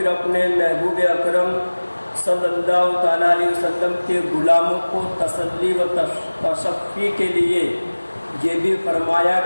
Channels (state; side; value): inverted; both; correlation -1.00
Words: اپنے محبوب اکرم صلی اللہ تعالیٰ علیہ وسلم کے غلاموں کو تسلی و تشفی کے لیے یہ بھی فرمایا